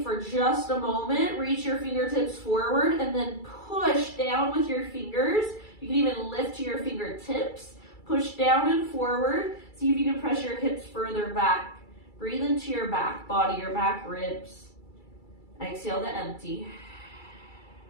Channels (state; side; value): late; right; 2.3 ms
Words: for just a moment, reach your fingertips forward and then push down with your fingers. You can even lift to your fingertips. Push down and forward. See if you can press your hips further back. Breathe into your back body, your back ribs. Exhale to empty.